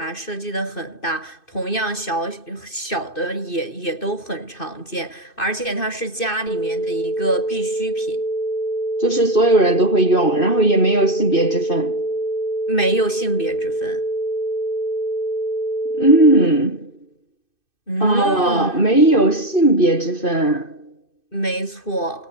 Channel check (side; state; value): right; late; 2.6 ms